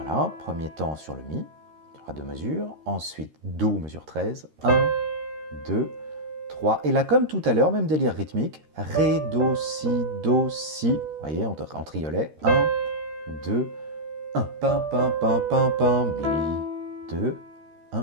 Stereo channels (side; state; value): left; late; 13 ms